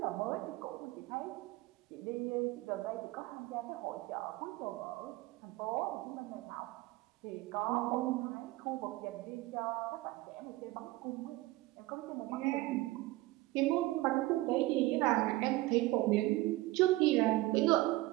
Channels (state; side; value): quieter; left; 19.1 dB